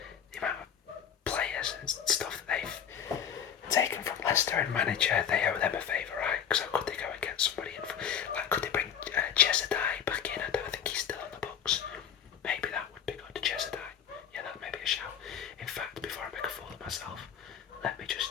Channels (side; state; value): right; quieter; 8.3 dB